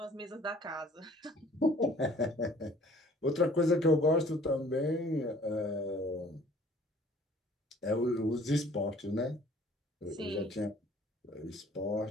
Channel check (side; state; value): both; normal; correlation 0.54